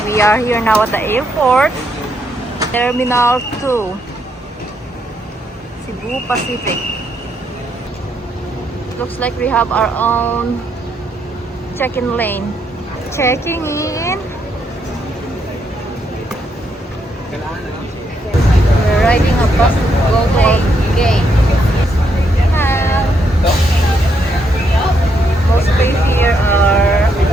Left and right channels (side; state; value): both; normal; correlation 0.76